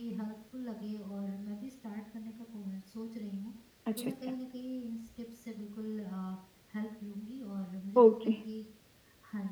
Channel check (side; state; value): both; identical; correlation 1.00